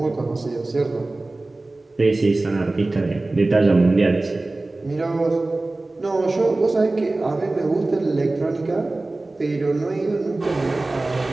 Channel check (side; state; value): left; quieter; 3.0 dB